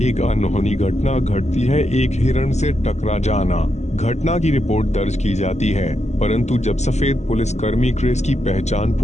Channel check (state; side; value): late; right; 0.33 ms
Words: एक अनहोनी घटना घटती है, एक हिरण से टकरा जाना। घटना की रिपोर्ट दर्ज की जाती है, परंतु जब सफेद पुलिसकर्मी क्रिस की पहचान